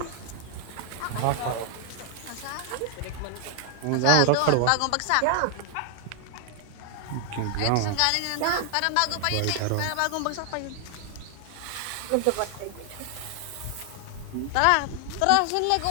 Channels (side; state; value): both; different; correlation 0.00